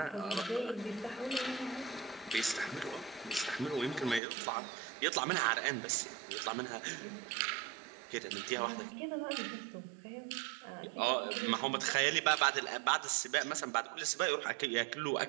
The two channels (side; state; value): left; drops out; at 4.2 s